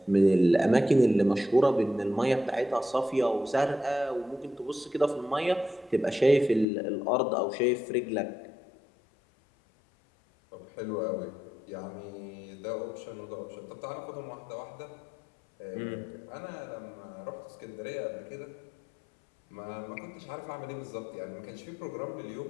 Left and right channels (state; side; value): drops out; right; at 6.7 s